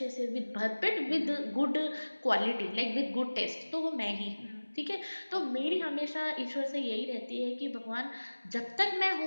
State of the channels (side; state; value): both; inverted; correlation -1.00